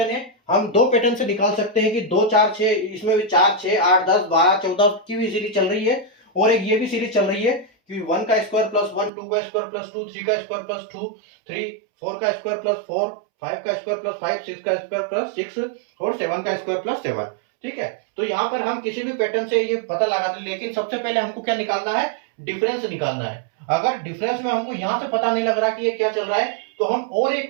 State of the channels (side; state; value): left; drops out; at 9.1 s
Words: है, हम दो पैटर्न से निकाल सकते हैं कि 2 4 6, इसमें भी 4 6 8 10 12 14 की भी सीरीज चल रही है, और एक ये भी सीरीज चल रही है कि 1 का स्क्वायर प्लस 1, 2 का स्क्वायर प्लस 2, 3 का स्क्वायर प्लस 2 3, 4 का स्क्वायर प्लस 4, 5 का स्क्वायर प्लस 5, 6 का स्क्वायर प्लस 6 और 7 का स्क्वायर प्लस 7। ठीक है, तो यहाँ पर हम किसी भी पैटर्न से ये पता लगा दें, लेकिन सबसे पहले हमको क्या निकालना है, डिफरेंस निकालना है। अगर डिफरेंस में हमको यहां से पता नहीं लग रहा कि ये क्या चल रहा है, तो हम और एक